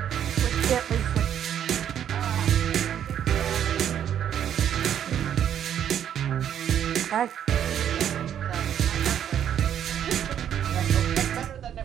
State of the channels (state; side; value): quieter; left; 9.6 dB